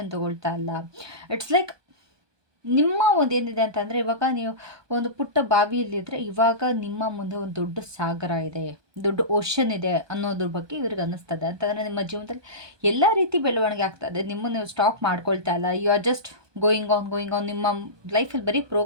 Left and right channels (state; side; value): late; left; 1.2 ms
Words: ತೊಗೊಳ್ತಾ ಇಲ್ಲ. ಇಟ್ಸ್ ಲೈಕ್ ನಿಮ್ಮ ಒಂದು ಏನಿದೆ ಅಂತಂದರೆ, ಇವಾಗ ನೀವು ಒಂದು ಪುಟ್ಟ ಬಾವಿಯಲ್ಲಿದ್ದರೆ ಇವಾಗ ನಿಮ್ಮ ಮುಂದೆ ಒಂದು ದೊಡ್ಡ ಸಾಗರ ಇದೆ, ದೊಡ್ಡ ಓಷನ್ ಇದೆ ಅನ್ನೋದ್ರ ಬಗ್ಗೆ ಇವ್ರಿಗೆ ಅನ್ನಿಸ್ತದೆ. ಅಂತಂದರೆ ನಿಮ್ಮ ಜೀವನದಲ್ಲಿ ಎಲ್ಲ ರೀತಿ ಬೆಳವಣಿಗೆ ಆಗ್ತದೆ, ನಿಮ್ಮನ್ನು ನೀವು ಸ್ಟಾಪ್ ಮಾಡ್ಕೊಳ್ತಾ ಇಲ್ಲ, you are just going on, ನಿಮ್ಮ ಲೈಫಲ್ಲಿ ಬರೀ